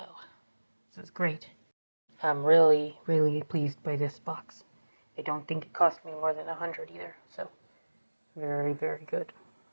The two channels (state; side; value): inverted; both; correlation -1.00